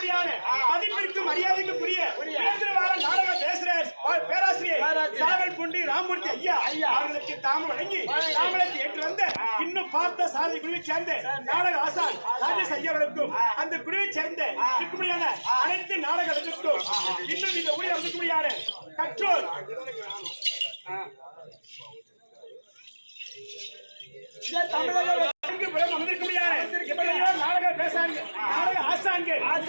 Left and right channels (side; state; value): both; inverted; correlation -1.00